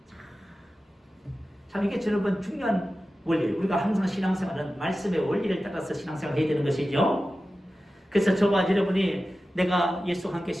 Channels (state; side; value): normal; both; correlation 0.94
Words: 참 이게 여러분 중요한 원리. 우리가 항상 신앙생활은 말씀의 원리를 따라서 신앙생활을 해야 되는 것이죠. 그래서 저와 여러분이 내가 예수와 함께